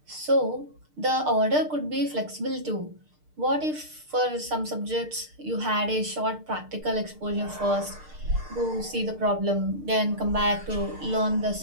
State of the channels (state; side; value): late; left; 6.6 ms